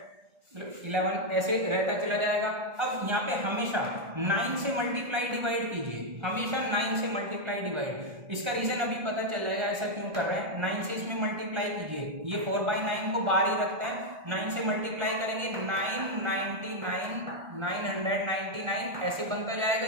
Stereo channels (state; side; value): late; left; 1.3 ms